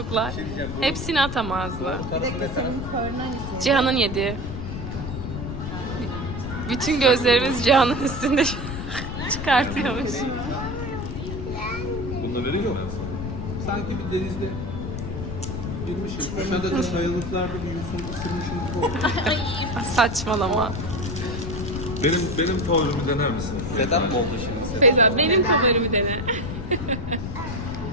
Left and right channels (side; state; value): left; noise; rumble, 6 dB below the sound